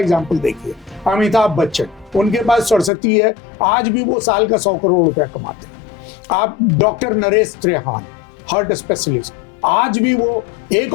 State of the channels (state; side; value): drops out; right; at 2.9 s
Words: देखिए, अमिताभ बच्चन, उनके पास सरस्वती है, आज भी वो साल का 100 करोड़ रुपया कमाते हैं। आप doctor Naresh Trehan, heart specialist, आज भी वो एक